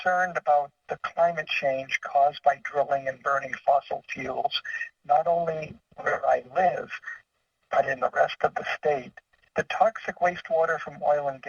about the climate change caused by drilling and burning fossil fuels, not only where I live, but in the rest of the state. The toxic wastewater from oil and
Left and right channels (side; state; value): both; identical; correlation 1.00